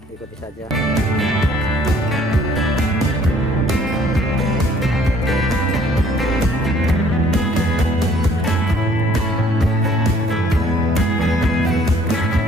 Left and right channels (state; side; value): normal; both; correlation 0.59